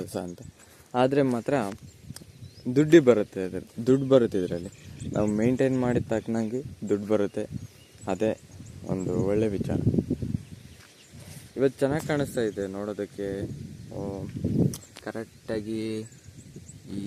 ಅಂತ. ಆದರೆ ಮಾತ್ರ ದುಡ್ಡು ಬರುತ್ತೆ ಇದರಲ್ಲಿ. ನಾವು ಮೇಂಟೈನ್ ಮಾಡಿದ ತಕ್ಕನಾಗಿ ದುಡ್ಡು ಬರುತ್ತೆ. ಅದೇ ಒಂದು ಒಳ್ಳೆ ವಿಚಾರ. ಇವತ್ತು ಚೆನ್ನಾಗಿ ಕಾಣಿಸ್ತಾ ಇದೆ ನೋಡೋದಕ್ಕೆ. ಕರೆಕ್ಟಾಗಿ ಈ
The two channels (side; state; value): both; identical; correlation 1.00